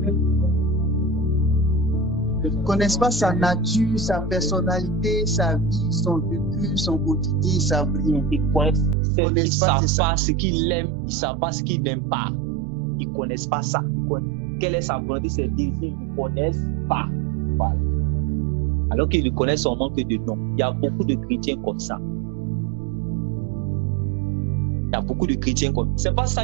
Ils ne connaissent pas sa nature, sa personnalité, sa vie, son vécu, son quotidien, ils savent rien. Ils ne savent pas ce qu'il aime, ils ne savent pas ce qu'il n'aime pas. Ils ne connaissent pas ça. Quelle est sa volonté, ses désirs, ils ne connaissent pas. Voilà. Alors qu'ils ne connaissent son manque de nom. Il y a beaucoup de chrétiens comme ça. Il y a beaucoup de chrétiens comme ça. C'est pas ça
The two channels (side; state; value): left; drops out; at 9.0 s